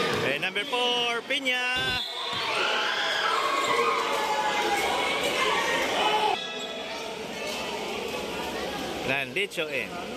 Number 4, Piña. Landicho in.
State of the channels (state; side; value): identical; both; correlation 1.00